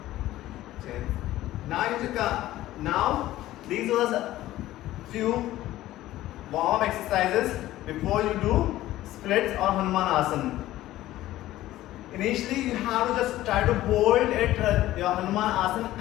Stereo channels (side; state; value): right; quieter; 15.1 dB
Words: Okay. Now these are a few warm exercises before you do splits or Hanumanasana. Initially, you have to just try to hold it, your Hanumanasana